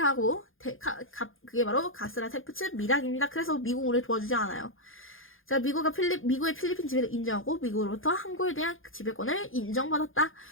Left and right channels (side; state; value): right; late; 0.59 ms